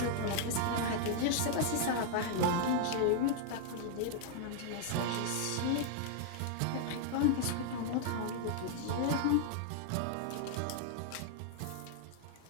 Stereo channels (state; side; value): different; both; correlation -0.01